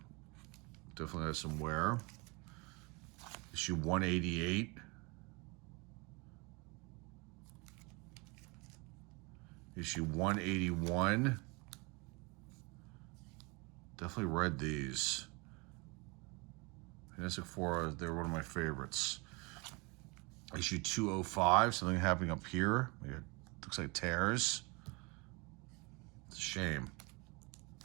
Definitely has some wear. Issue 188. Issue 181. Definitely read these. Fantastic Four, they're one of my favorites. Issue 205, something happening up here. It looks like tears. It's a shame.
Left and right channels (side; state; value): left; quieter; 28.3 dB